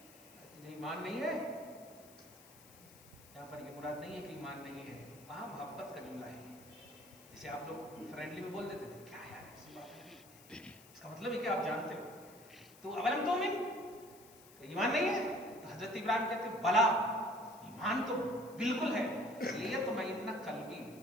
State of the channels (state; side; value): noise; left; hiss, 21 dB below the sound